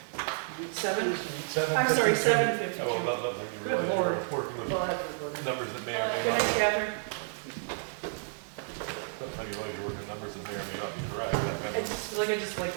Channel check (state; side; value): silent; left; digital silence